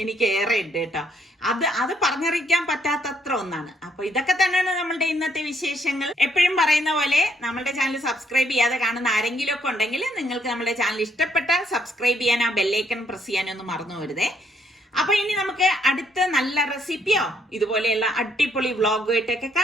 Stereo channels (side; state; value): both; normal; correlation 0.71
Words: എനിക്ക് ഏറെ ഉണ്ട് കേട്ടോ. അത് പറഞ്ഞറിയിക്കാൻ പറ്റാത്തത്ര ഒന്നാണ്. അപ്പൊ ഇതൊക്കെ തന്നെയാണ് നമ്മളുടെ ഇന്നത്തെ വിശേഷങ്ങൾ. എപ്പോഴും പറയുന്ന പോലെ നമ്മളുടെ ചാനൽ സബ്സ്ക്രൈബ് ചെയ്യാതെ കാണുന്ന ആരെങ്കിലും ഒക്കെ ഉണ്ടെങ്കിൽ നിങ്ങൾക്ക് നമ്മുടെ ചാനൽ ഇഷ്ടപ്പെട്ടാൽ സബ്സ്ക്രൈബ് ചെയ്യാൻ, ആ ബെല്ലൈക്കൺ പ്രസ് ചെയ്യാനൊന്നും മറന്നു വരുതേ. അപ്പൊ ഇനി നമുക്ക് അടുത്ത നല്ല റെസിപ്പിയോ ഇതുപോലെയുള്ള അടിപൊളി വ്ളോഗുമായിട്ടൊക്കെ